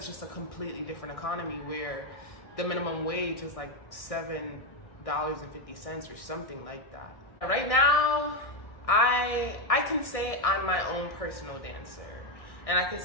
just a completely different economy where the minimum wage is like $7.50 or something like that. Right now, I can say I'm my own personal dancer. And I can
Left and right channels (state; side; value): late; right; 1.6 ms